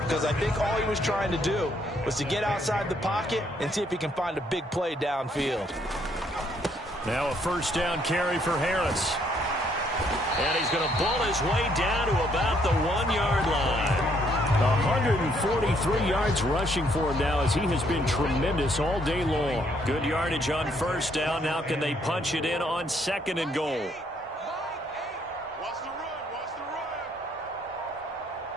Because I think all he was trying to do was to get outside the pocket and see if he can find a big play downfield. Now a first down carry for Harris. And he's going to bull his way down to about the 1-yard line. 143 yards rushing for him now, as he has been tremendous all day long. Good yardage on first down. Now can they punch it in on 2nd and goal?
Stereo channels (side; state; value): both; normal; correlation 0.69